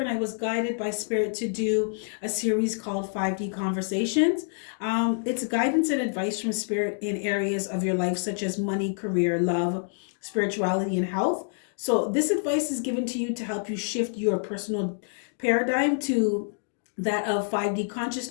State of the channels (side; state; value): right; silent; digital silence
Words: I was guided by Spirit to do a series called 5D Conversations. It's guidance and advice from Spirit in areas of your life, such as money, career, love, spirituality, and health. So this advice is given to you to help you shift your personal paradigm to that of 5D